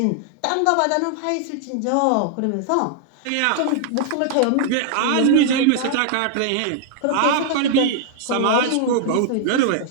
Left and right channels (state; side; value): different; both; correlation -0.01